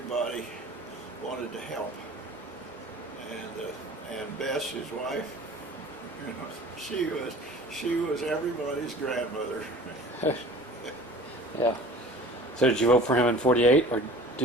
wanted to help. And Bess, his wife, you know, she was everybody's grandmother. Yeah. So did you vote for him in '48 or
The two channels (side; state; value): both; normal; correlation 0.44